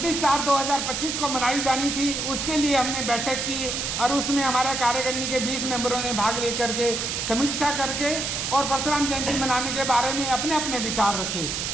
को मनाई जानी थी, उसके लिए हमने बैठक की और उसमें हमारे कार्यकारिणी के 20 मेंबरों ने भाग लेकर के समीक्षा करके और परशुराम जयंती मनाने के बारे में अपने अपने विचार रखे।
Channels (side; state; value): right; noise; hiss, 2 dB below the sound